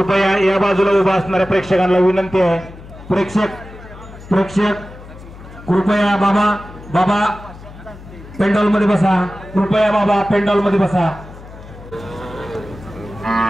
या बाजूला उभा असणाऱ्या प्रेक्षकांना विनंती आहे, प्रेक्षक कृपया बाबा पेंडॉल मध्ये बसा, कृपया बाबा पेंडॉल मध्ये बसा।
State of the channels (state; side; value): noise; left; hum, 17 dB below the sound